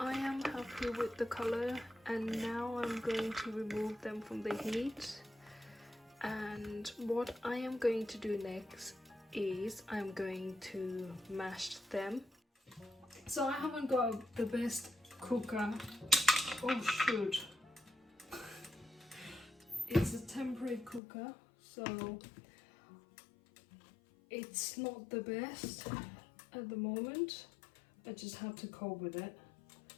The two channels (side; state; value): right; drops out; at 21.0 s